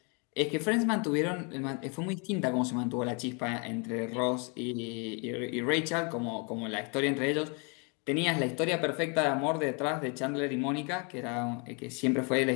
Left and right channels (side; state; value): right; quieter; 34.2 dB